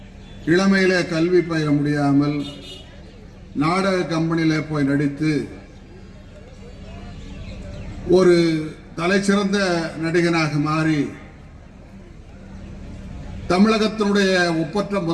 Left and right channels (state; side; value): identical; both; correlation 1.00